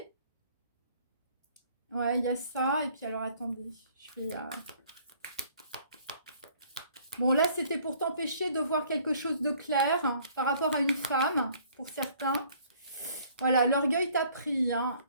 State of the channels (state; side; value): inverted; both; correlation -0.58